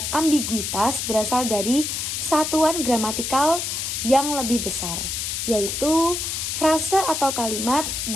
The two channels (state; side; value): noise; left; hiss, 3 dB below the sound